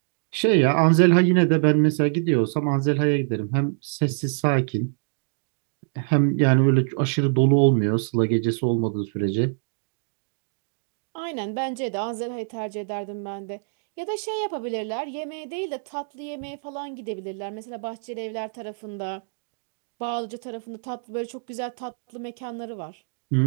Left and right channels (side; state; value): left; silent; digital silence